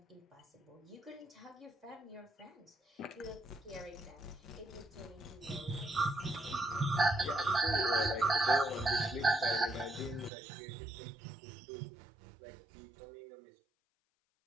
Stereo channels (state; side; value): drops out; left; at 10.3 s